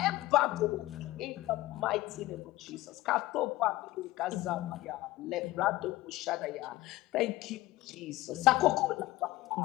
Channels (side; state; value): right; quieter; 17.4 dB